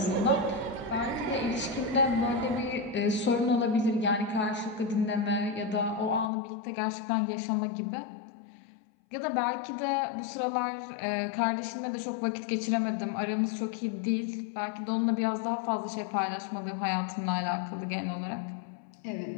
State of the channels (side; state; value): right; drops out; at 6.2 s